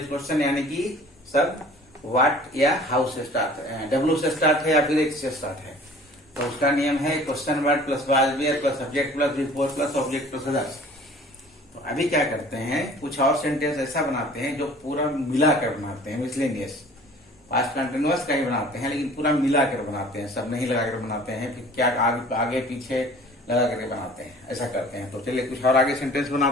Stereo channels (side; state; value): both; normal; correlation 0.48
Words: क्वेश्चन यानी कि सब व्हाट या हाउ से स्टार्ट है, W से स्टार्ट है या फिर H से स्टार्ट है। तो उसका नियम है question word plus was where plus subject plus before plus object plus others. तो अभी क्या करते हैं, कुछ और सेंटेंस ऐसा बनाते हैं जो पूरा मिलाकर बनाते हैं, मिसलेनियस। पास्ट कंटिन्यूअस का ही बनाते हैं लेकिन पूरा मिलाकर बनाते हैं, सब नहीं लगाकर बनाते हैं, फिर क्या आगे पीछे लगा करके बनाते हैं, ऐसा करते हैं। तो चलिए कुछ और आगे सेंटेंस